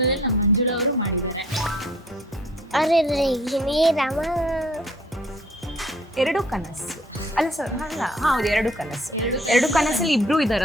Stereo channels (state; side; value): normal; both; correlation 0.57